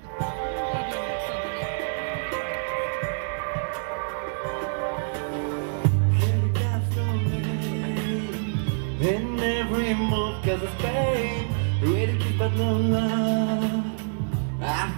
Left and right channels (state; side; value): silent; left; digital silence